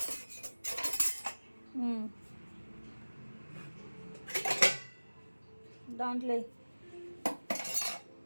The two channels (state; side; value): inverted; both; correlation -1.00